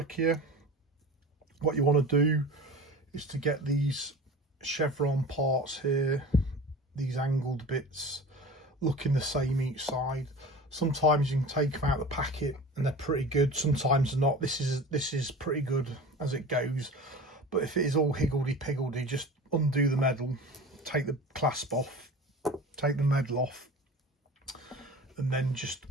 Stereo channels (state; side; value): normal; both; correlation 0.36